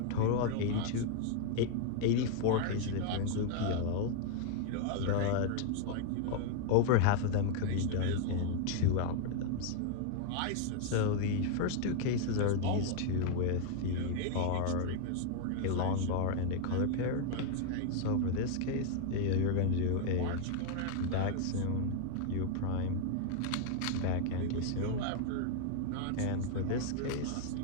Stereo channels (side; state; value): both; different; correlation 0.00